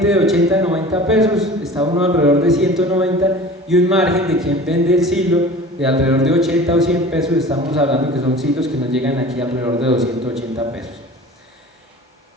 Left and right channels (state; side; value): normal; both; correlation 0.40